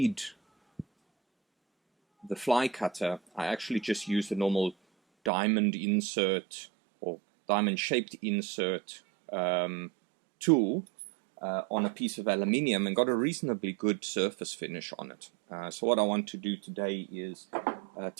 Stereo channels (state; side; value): drops out; left; at 5.3 s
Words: the fly cutter, I actually just used a normal diamond insert or diamond shaped insert tool on a piece of aluminium and got a reasonably good surface finish on it. So what I want to do today is